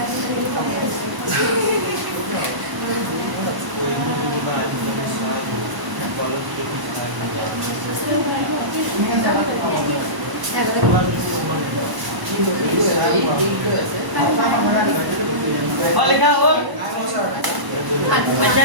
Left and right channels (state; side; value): late; left; 1.0 ms